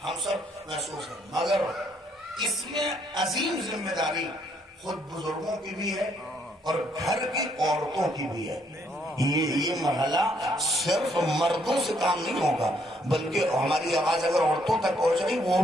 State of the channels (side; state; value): both; normal; correlation 0.70